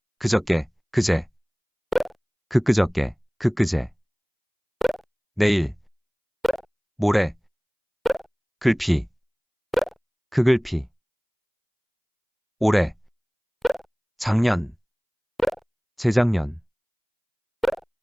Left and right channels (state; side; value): identical; both; correlation 1.00